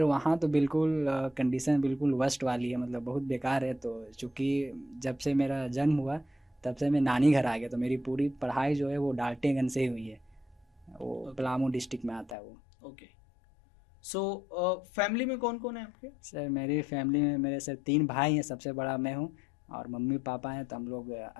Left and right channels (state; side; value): drops out; right; at 12.4 s